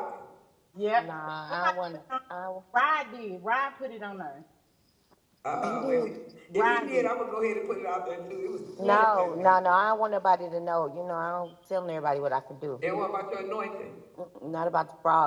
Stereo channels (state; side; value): identical; both; correlation 1.00